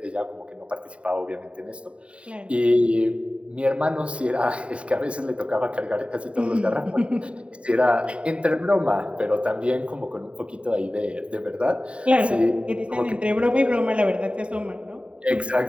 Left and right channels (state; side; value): late; left; 0.060 ms